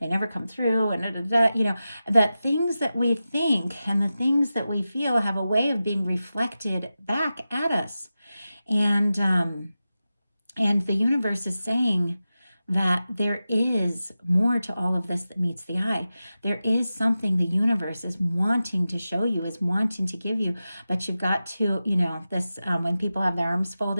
never come through, and that things that we think and the things that we feel have a way of being reflected back at us. And the universe is saying that there is more to all of this that meets the eye. There is something the universe is wanting to show you, is wanting to give you, but you've got to, this when people have their arms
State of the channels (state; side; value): inverted; both; correlation -0.93